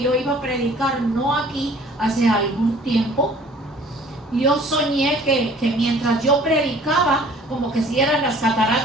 iba a predicar, no aquí, hace algún tiempo, yo soñé que mientras yo predicaba, como que si eran las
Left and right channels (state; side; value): normal; both; correlation 0.52